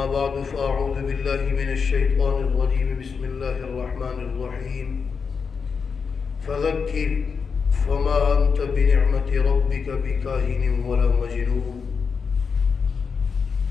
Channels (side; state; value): right; quieter; 5.6 dB